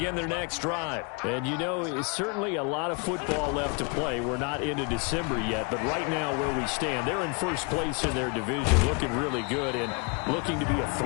their next drive. And, you know, it's certainly a lot of football left to play. We're not into December yet, but right now where we stand, they're in first place in their division, looking really good and looking to be a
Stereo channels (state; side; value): quieter; right; 32.3 dB